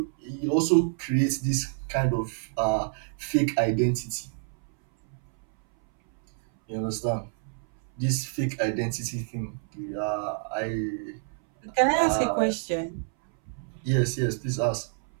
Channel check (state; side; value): silent; left; 60 dB below the other